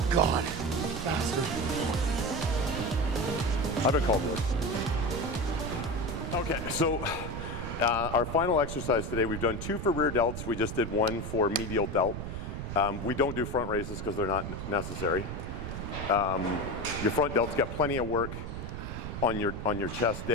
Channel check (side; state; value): right; noise; rumble, 6 dB below the sound